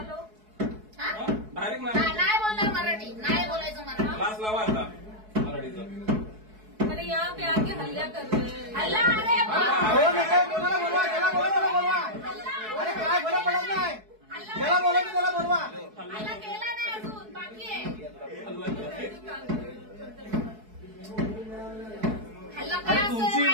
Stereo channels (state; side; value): late; left; 4.7 ms